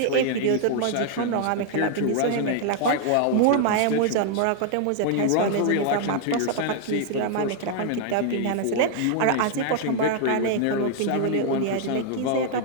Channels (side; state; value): both; different; correlation 0.00